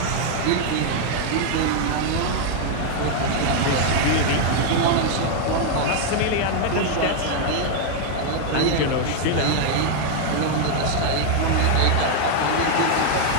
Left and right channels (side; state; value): both; different; correlation 0.00